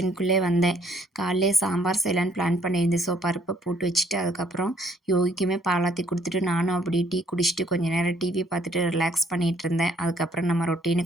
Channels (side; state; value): both; normal; correlation 0.64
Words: வந்தேன். காலையிலே சாம்பார் செய்யலான்னு பிளான் பண்ணியிருந்தேன். ஸோ பருப்பை போட்டு வச்சுட்டு, அதுக்கப்புறம் யோகிக்குமே பாலாத்தி குடுத்துட்டு, நானும் அப்படியே டீ குடிச்சிட்டு, கொஞ்ச நேரம் டிவி பார்த்துட்டு ரிலாக்ஸ் பண்ணிட்டு இருந்தேன். அதுக்கப்புறம் நம்ம